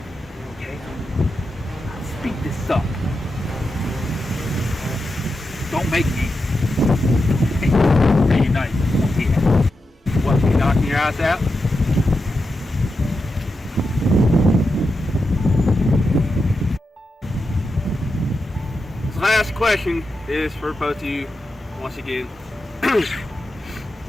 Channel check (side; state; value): both; normal; correlation 0.88